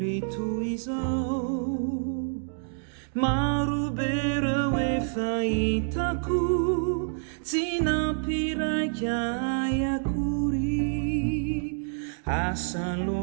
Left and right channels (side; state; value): left; silent; digital silence